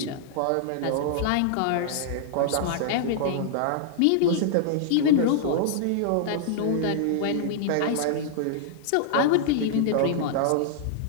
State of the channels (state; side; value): different; both; correlation -0.01